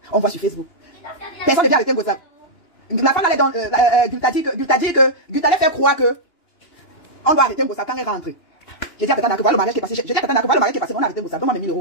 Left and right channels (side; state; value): right; late; 2.9 ms